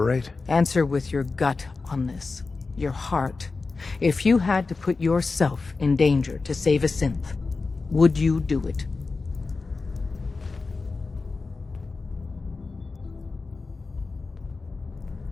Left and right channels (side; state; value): right; quieter; 4.0 dB